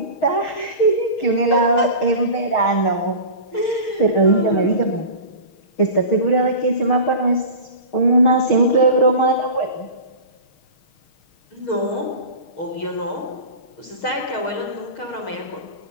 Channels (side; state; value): right; late; 6.4 ms